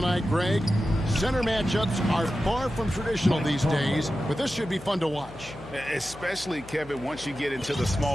Greg. Center matchups are far from traditional these days, but this should be fun to watch. Especially, Kevin, once you get into the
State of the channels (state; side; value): noise; left; hum, 19 dB below the sound